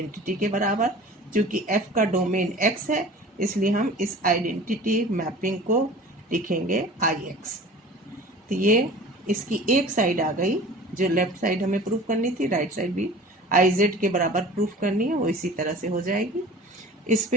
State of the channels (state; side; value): normal; both; correlation 0.41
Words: के बराबर। क्योंकि एफ का डोमेन एक्स है इसलिए हम इस आइडेंटिटी मैपिंग को लिखेंगे आई एक्स। तो ये इसकी एक साइड आ गई, जो लेफ्ट साइड हमें प्रूफ करनी थी, राइट साइड भी आई जेड के बराबर प्रूफ करनी है, वो इसी तरह से हो जाएगी। इस